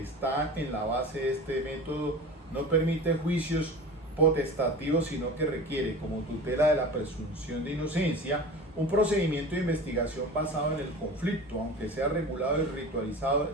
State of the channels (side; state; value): both; normal; correlation 0.35